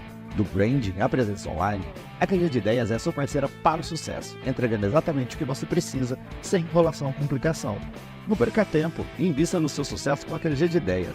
Do branding à presença online, a QG de Ideias é sua parceira para o sucesso, entregando exatamente o que você precisa, sem enrolação ou complicação. Não perca tempo e invista no seu sucesso com a QG de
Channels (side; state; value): both; identical; correlation 1.00